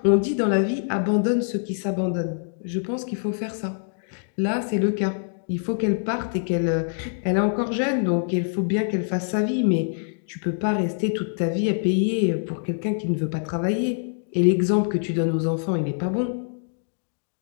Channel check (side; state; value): right; silent; digital silence